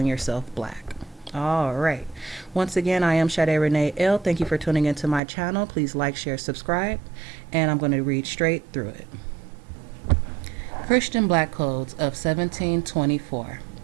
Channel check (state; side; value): drops out; left; at 5.2 s